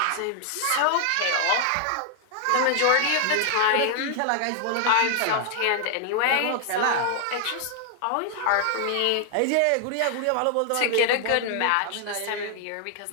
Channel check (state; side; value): different; both; correlation 0.00